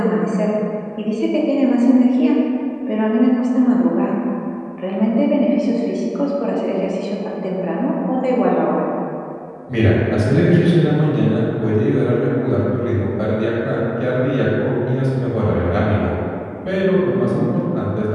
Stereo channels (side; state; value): both; identical; correlation 1.00